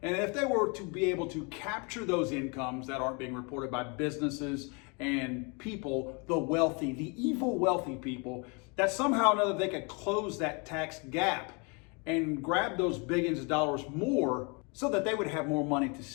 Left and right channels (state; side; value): quieter; right; 32.1 dB